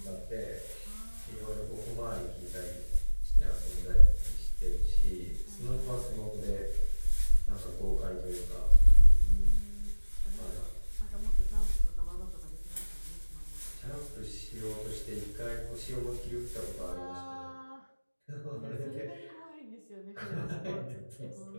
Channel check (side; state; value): both; inverted; correlation -1.00